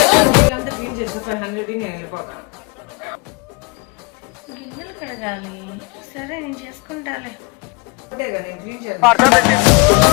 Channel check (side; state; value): right; quieter; 27.8 dB